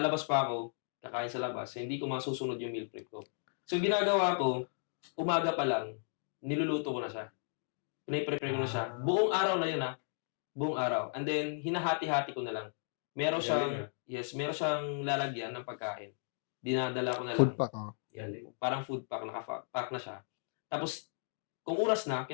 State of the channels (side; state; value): right; silent; digital silence